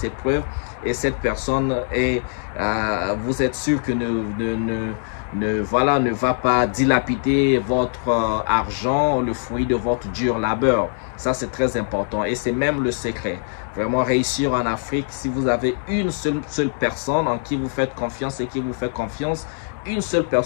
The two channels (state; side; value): silent; right; digital silence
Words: preuves. Et cette personne, vous êtes sûr que ne va pas dilapider votre argent, le fruit de votre dur labeur. Ça, c'est très important et c'est même le secret. Vraiment réussir en Afrique, si vous avez une seule personne en qui vous faites confiance et qui vous fait confiance, une seule